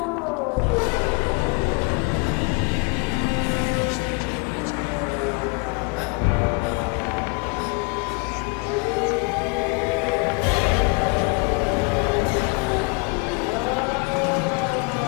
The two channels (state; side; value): quieter; right; 31.7 dB